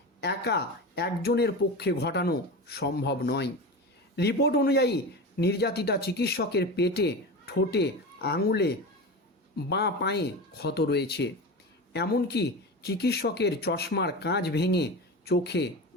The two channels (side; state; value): both; normal; correlation 0.26